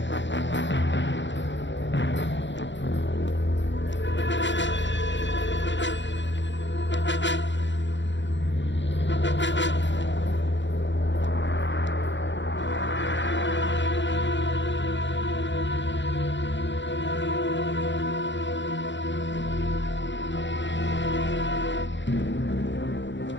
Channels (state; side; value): late; right; 0.53 ms